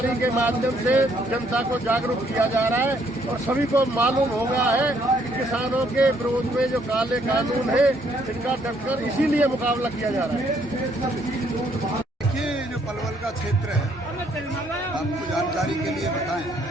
के माध्यम से जनता को जागरूक किया जा रहा है और सभी को मालूम हो गया है कि किसानों के विरोध में जो काले कानून है इनका डटकर इसीलिए मुकाबला किया जा रहा है। देखिए जो पलवल का क्षेत्र है, आपको जानकारी के लिए बताएं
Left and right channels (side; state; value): both; normal; correlation 0.68